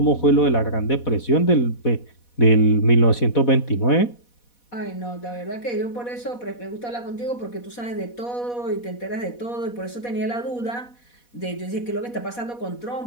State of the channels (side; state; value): right; late; 4.1 ms